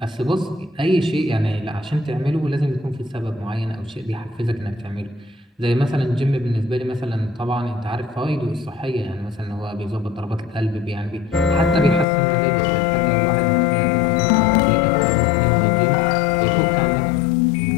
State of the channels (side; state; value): right; drops out; at 12.1 s